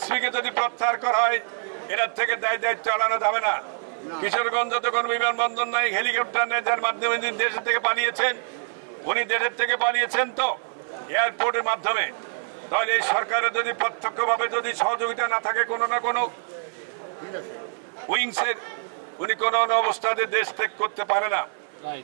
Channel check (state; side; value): silent; left; digital silence